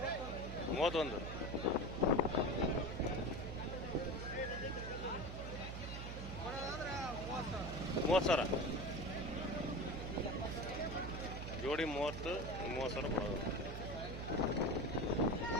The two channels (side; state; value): right; noise; hum, 6 dB below the sound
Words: 31 30,000 ಜೋಡಿ 30,000 ಕೊಡೋದು.